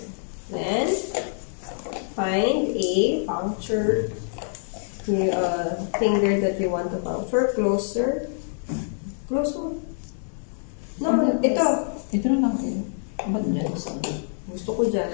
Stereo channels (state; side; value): silent; right; 57 dB below the other